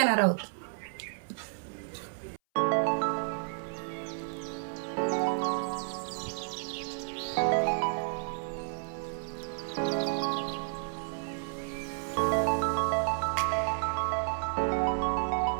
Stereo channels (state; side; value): silent; left; 57 dB below the other